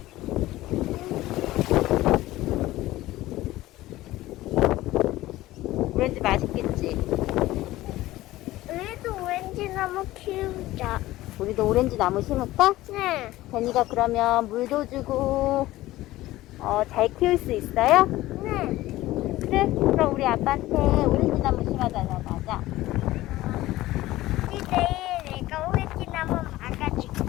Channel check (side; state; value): right; quieter; 16.7 dB